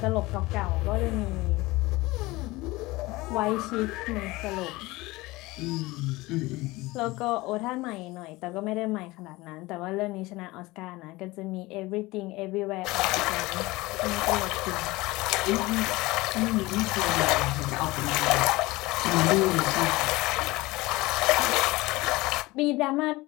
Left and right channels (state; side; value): quieter; right; 20.9 dB